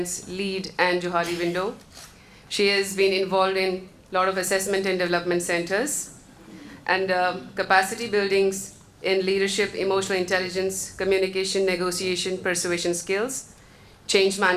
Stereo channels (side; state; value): both; identical; correlation 1.00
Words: LEAD, and Johari Window. She has been involved in a lot of assessment and development centers and capacity buildings in leadership, emotional intelligence, communication, negotiation, persuasion skills, change